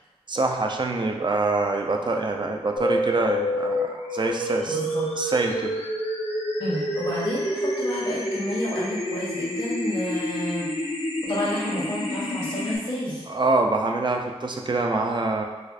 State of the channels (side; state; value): both; normal; correlation 0.63